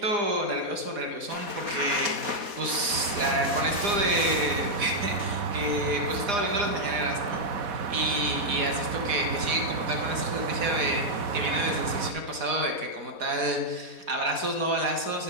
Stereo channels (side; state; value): left; late; 4.1 ms